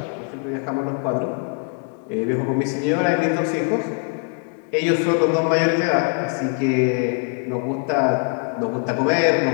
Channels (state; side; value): quieter; right; 38.3 dB